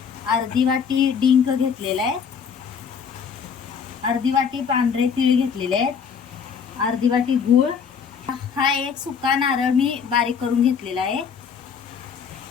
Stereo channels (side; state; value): right; quieter; 6.6 dB